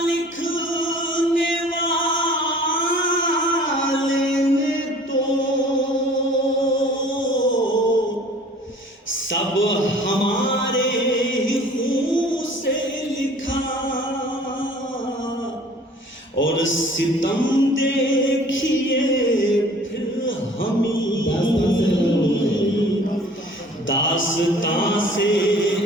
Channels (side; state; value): both; normal; correlation 0.50